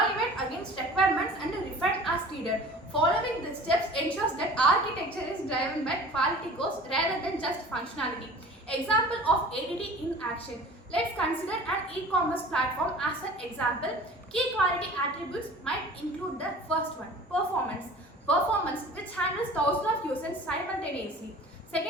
against requirements and refine as needed. Following these steps ensures that architecture is driven by quality goals rather than just functionality. Example of ADD in action. Let's consider an e-commerce platform as an example. Key quality attributes might include the first one, performance. Performance, which handles thousands of users simultaneously.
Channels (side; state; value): both; normal; correlation 0.43